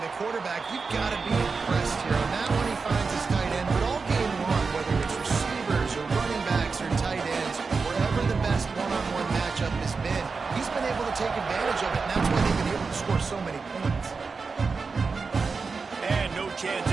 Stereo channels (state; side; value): quieter; left; 4.7 dB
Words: quarterback. You've got to be impressed here. On that one, he finds his tight end, but all game long, whether it's receivers or running backs or tight ends, wherever the best one-on-one matchup has been, he's been able to take advantage of it, and that's why they've been able to score so many points. And no chance